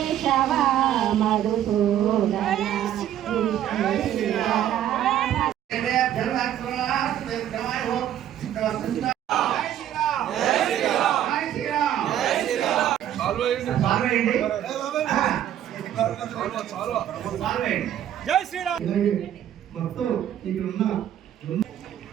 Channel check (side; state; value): left; quieter; 11.1 dB